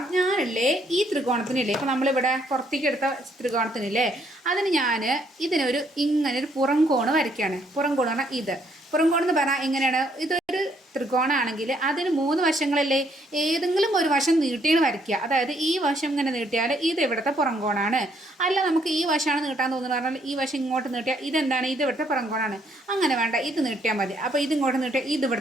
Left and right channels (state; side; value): normal; both; correlation 0.69